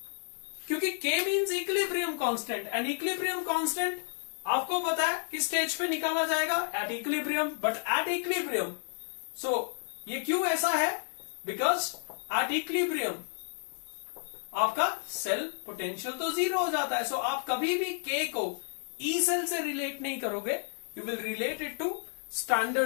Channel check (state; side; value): silent; right; 57 dB below the other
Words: क्योंकि K means equilibrium constant and equilibrium constant आपको पता है किस स्टेज पे निकाला जाएगा? At equilibrium. But at equilibrium, so ये क्यों ऐसा है? Because at equilibrium आपका सेल पोटेंशियल तो 0 हो जाता है. सो आप कभी भी K को E सेल से रिलेट नहीं करोगे, you will relate it to